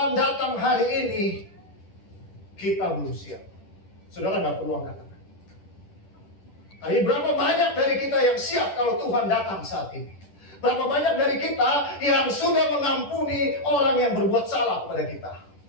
datang hari ini, kita belum siap. Saudara nggak perlu angkat-angkat. Tapi berapa banyak dari kita yang siap kalau Tuhan datang saat ini? Berapa banyak dari kita yang sudah mengampuni orang yang berbuat salah kepada kita?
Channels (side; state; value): right; late; 10 ms